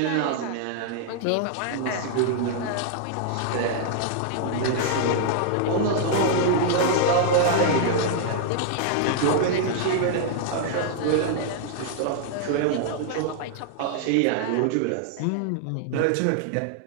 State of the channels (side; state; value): both; different; correlation 0.00